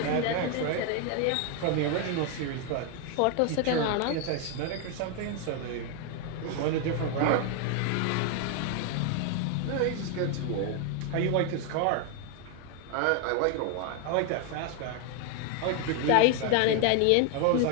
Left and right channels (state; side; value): different; both; correlation 0.01